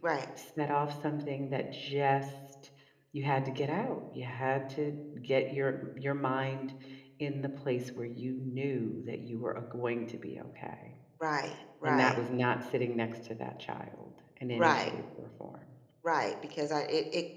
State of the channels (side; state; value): both; identical; correlation 1.00